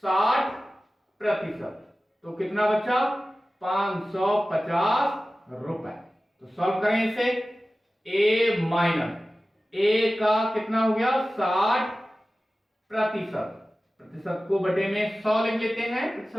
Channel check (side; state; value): both; normal; correlation 0.96